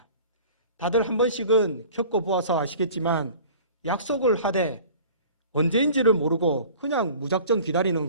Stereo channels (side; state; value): both; inverted; correlation -0.45